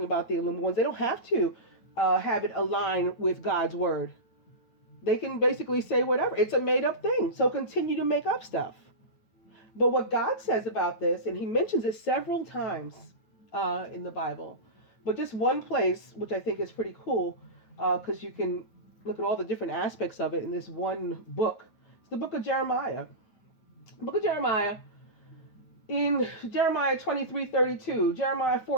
about the illumined ones, they don't have to have it align with God's word. They can basically say whatever. It's a made up thing. So continue to make up stuff. But what God says about this, and he mentions it several times in the Bible, but just one place, which I think is pretty cool, because you can look at all the different aspects of it in this one book. It's the book of Jeremiah. The book of Jeremiah, in Jeremiah 23:32, Jeremiah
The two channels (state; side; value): late; right; 9.2 ms